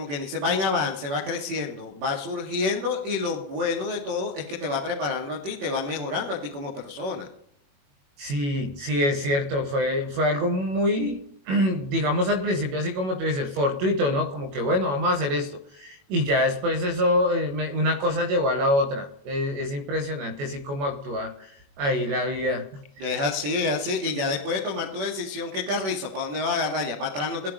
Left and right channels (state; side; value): late; left; 21 ms